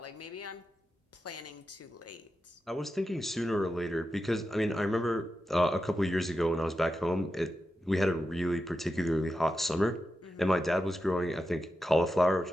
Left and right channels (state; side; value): normal; both; correlation 0.89